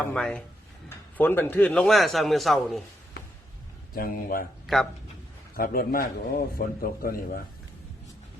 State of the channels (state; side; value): normal; both; correlation 0.79